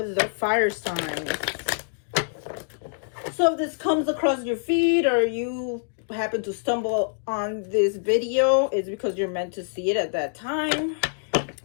the fire signs. So if this comes across your feed or you happen to stumble on this video, it's because you're meant to see it at that time.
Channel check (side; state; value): right; silent; digital silence